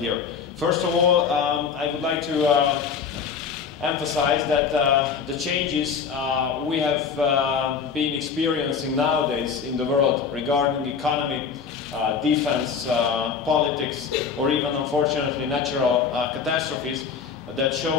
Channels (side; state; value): right; quieter; 6.1 dB